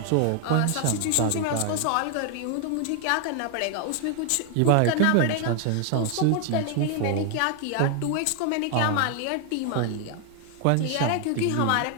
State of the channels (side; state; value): both; different; correlation 0.00